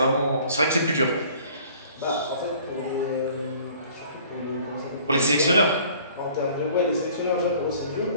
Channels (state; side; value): inverted; both; correlation -0.52